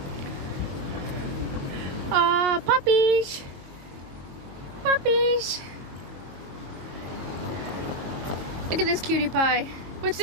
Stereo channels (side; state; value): left; late; 22 ms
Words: Puppies! Puppies! Look at this cutie pie. What's